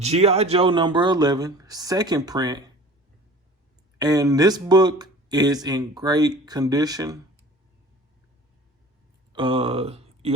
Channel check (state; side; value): normal; both; correlation 0.43